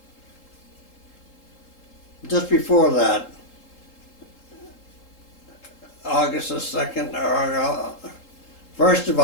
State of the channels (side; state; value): right; late; 3.8 ms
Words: Just before that, August the 2nd, or 1st of